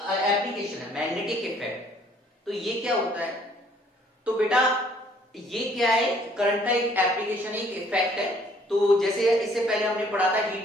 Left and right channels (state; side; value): normal; both; correlation 0.61